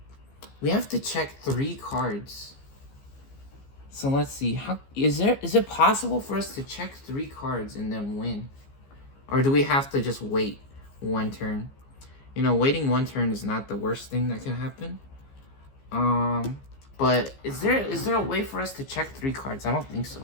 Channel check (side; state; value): right; late; 15 ms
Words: check 3 cards. So let's see. How is it possible for us to check 3 cards and then win? Or do we have to just wait 1 turn? You know, waiting 1 turn is not the worst thing that can happen. But is there a way for us to check 3 cards? I don't think so,